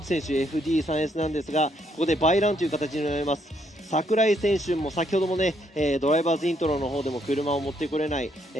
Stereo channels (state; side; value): normal; both; correlation 0.72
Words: 選手 FD3S なんですが、ここでバイランという形になります。櫻井選手も先ほどもね、ドライバーズイントロの方でも車を持ってこれない、